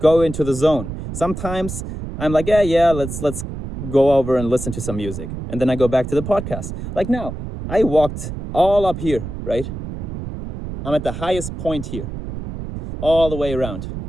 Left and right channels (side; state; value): right; noise; rumble, 8 dB below the sound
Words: into the zone. Sometimes I'm like, yeah, let's go over and listen to some music. And then I go back to the podcast. Like now, I walked all up here, right? I'm at the highest point here, all the way around.